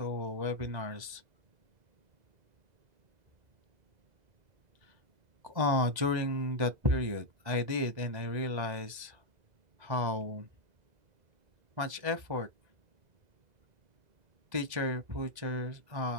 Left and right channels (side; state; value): left; late; 2.0 ms